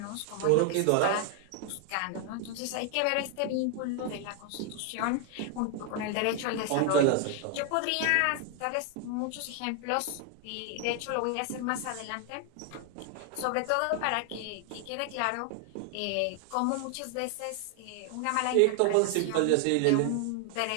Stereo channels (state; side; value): different; both; correlation 0.00